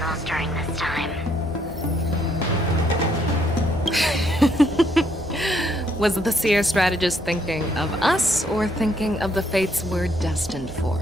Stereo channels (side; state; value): both; normal; correlation 0.71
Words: during this time. Was the seer strategist thinking of us or thinking of the fates we're destined for?